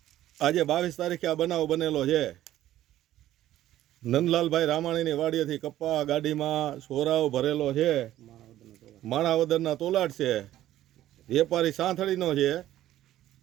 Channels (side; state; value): left; quieter; 13.4 dB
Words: આજે 22 તારીખે આ બનાવ બનેલો છે। નંદલાલભાઈ રામાણીની વાડીએથી કપા ગાડીમાં સોરાવ ભરેલો છે, માણાવદરના તોલાટ છે, વેપારી સાંથળીનો છે,